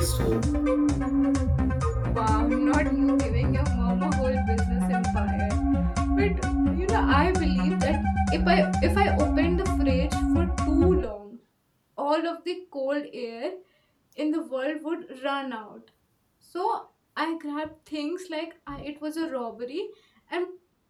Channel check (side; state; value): both; identical; correlation 1.00